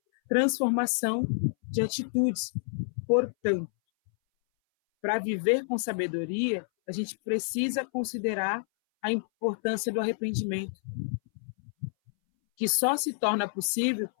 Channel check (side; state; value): right; silent; 59 dB below the other